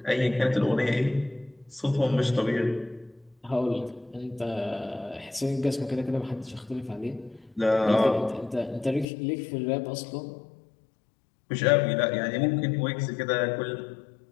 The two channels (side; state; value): right; drops out; at 9.1 s